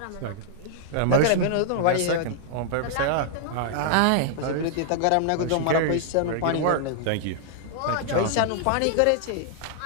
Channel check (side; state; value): both; different; correlation -0.01